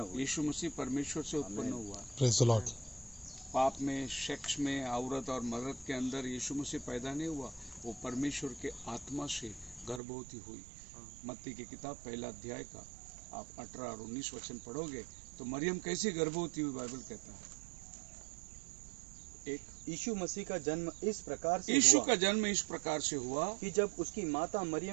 हुए। यीशु मसीह परमेश्वर से उत्पन्न हुआ। Praise the Lord. पाप में, सेक्स में, औरत और मर्द के अंदर यीशु मसीह पैदा नहीं हुआ, वो परमेश्वर के आत्मा से गर्भवती हुई। मत्ती की किताब पहला अध्याय का आप 18 और 19 वचन पढ़ोगे तो मरियम कैसी गर्भवती हुई, बाइबल कहता है। एक यीशु मसीह का जन्म इस प्रकार से यीशु हुआ का जन्म इस प्रकार से हुआ कि जब उसकी माता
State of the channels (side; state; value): left; drops out; at 10.0 s